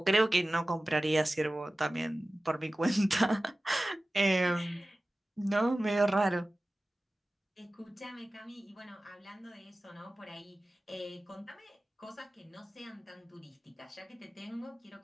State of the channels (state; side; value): normal; both; correlation 0.96